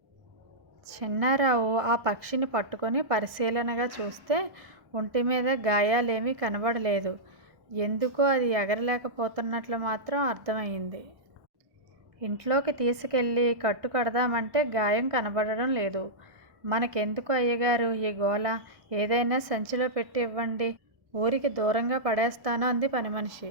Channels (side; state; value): left; late; 1.1 ms